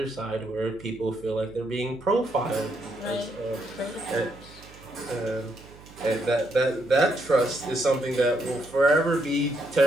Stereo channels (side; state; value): right; noise; hum, 21 dB below the sound